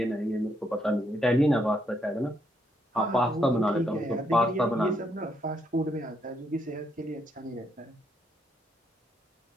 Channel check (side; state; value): both; normal; correlation 0.75